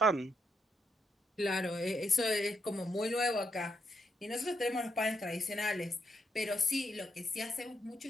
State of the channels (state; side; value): normal; both; correlation 0.80